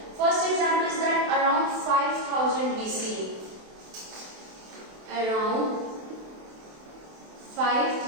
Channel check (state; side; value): late; left; 27 ms